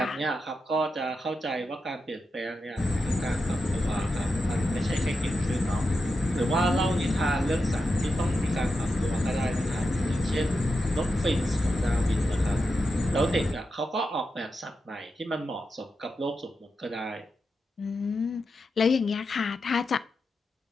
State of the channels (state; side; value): normal; both; correlation 0.88